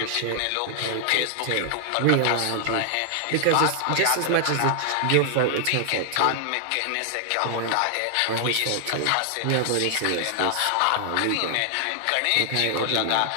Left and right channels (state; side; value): different; both; correlation 0.00